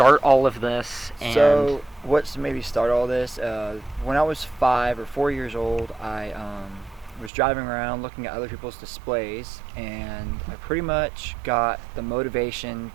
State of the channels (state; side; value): drops out; left; at 7.3 s